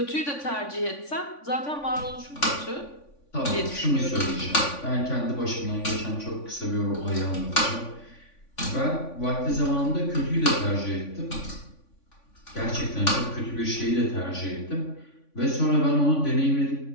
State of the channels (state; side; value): late; right; 3.5 ms